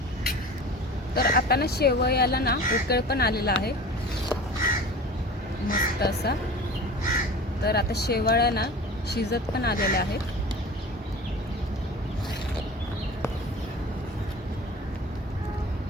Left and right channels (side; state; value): both; normal; correlation 0.38